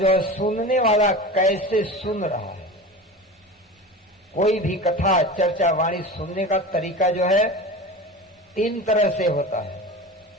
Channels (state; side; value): normal; both; correlation 0.31